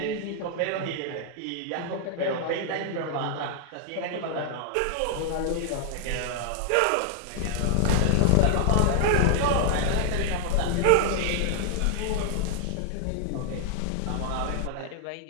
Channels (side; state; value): both; different; correlation -0.01